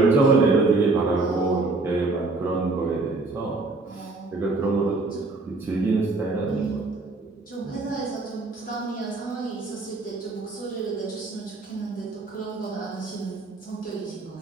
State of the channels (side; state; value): left; quieter; 3.5 dB